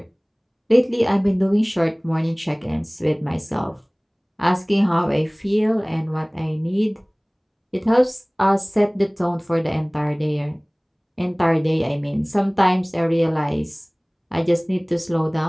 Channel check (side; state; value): both; identical; correlation 1.00